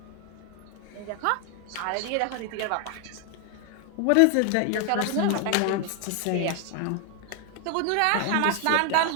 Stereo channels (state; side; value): different; both; correlation 0.00